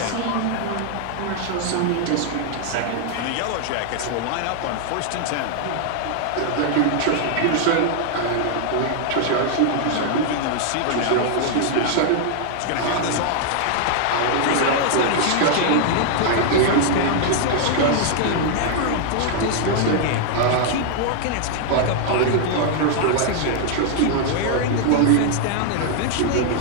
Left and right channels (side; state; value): both; different; correlation 0.00